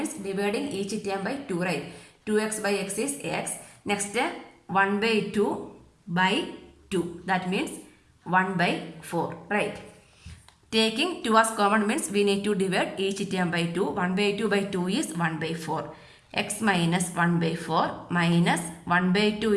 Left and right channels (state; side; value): identical; both; correlation 1.00